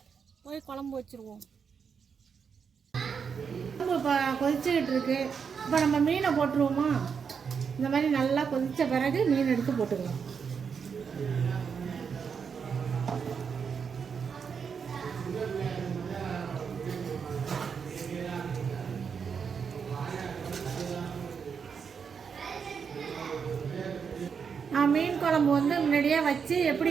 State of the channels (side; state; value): left; quieter; 6.4 dB